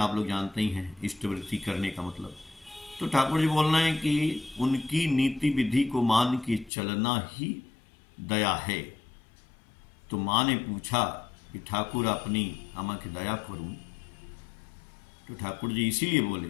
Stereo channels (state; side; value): drops out; right; at 6.7 s